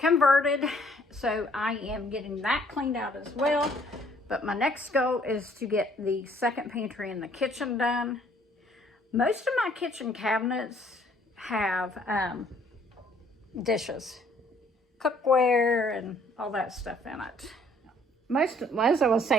So I am getting that cleaned out as well. But my next goal is to get the second pantry in the kitchen done. Most of my kitchen cabinets have dishes, cookware, and all that stuff in it. As I was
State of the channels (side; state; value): both; normal; correlation 0.61